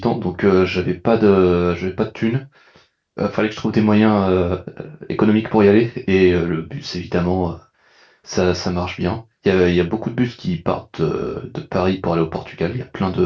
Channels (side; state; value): both; identical; correlation 1.00